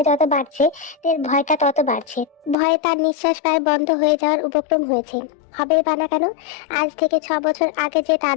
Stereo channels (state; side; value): drops out; right; at 2.6 s